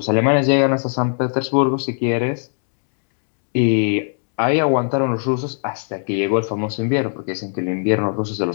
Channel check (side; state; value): right; silent; 66 dB below the other